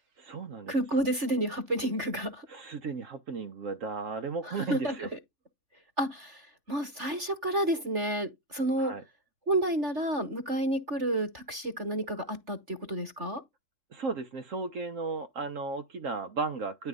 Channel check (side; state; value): left; late; 3.4 ms